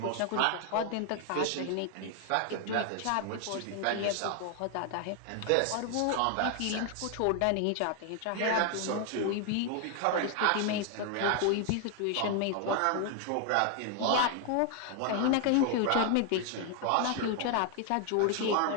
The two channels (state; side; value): different; both; correlation 0.00